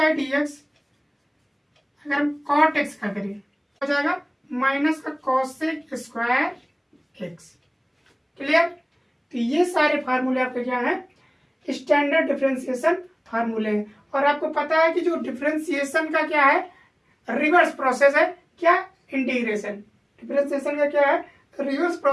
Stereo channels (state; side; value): identical; both; correlation 1.00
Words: डी एक्स। अगर हम कॉट एक्स का करें हो जाएगा माइनस का कॉसेक स्क्वायर एक्स। क्लियर? तो ये सारे फार्मूले आपके क्या है, स्टैंडर्ड डिफरेंशिएशन फार्मूले हैं। और आपको पता है कि जो डिफरेंशिएशन का क्या है, रिवर्स प्रोसेस है क्या, इंटीग्रेशन। डिफरेंशिएशन का क्या है, रिवर्स